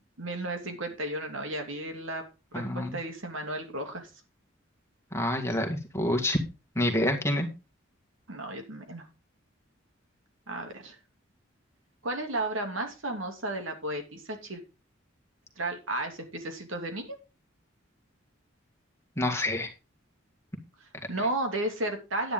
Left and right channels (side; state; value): both; normal; correlation 0.23